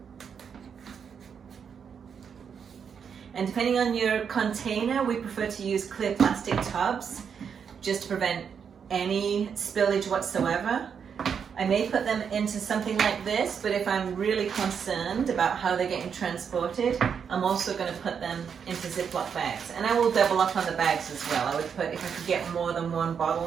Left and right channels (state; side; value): quieter; left; 7.0 dB